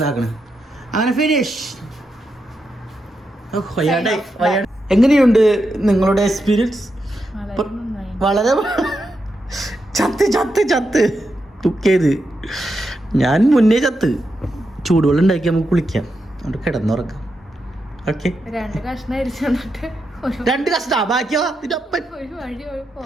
അങ്ങനെ ഫിനിഷ്. എങ്ങനെയുണ്ട് നിങ്ങളുടെ എക്സ്പീരിയൻസ്? വളരെ ചത്ത് കുക്ക് ചെയ്ത് ഞാൻ മുന്നേ ചത്ത്. ചൂടുവെള്ളം ഉണ്ടാക്കി നമുക്ക് കുളിക്കാം. അവിടെ കിടന്നുറക്കാം. ഓക്കെ 2 കഷ്ണം അരിച്ചിട്ട് 2 കഷ്ടാ ബാക്കിയോ ഒരു വഴി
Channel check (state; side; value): normal; both; correlation 0.85